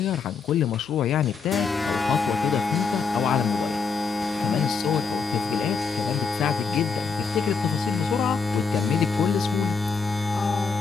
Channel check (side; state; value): right; quieter; 5.2 dB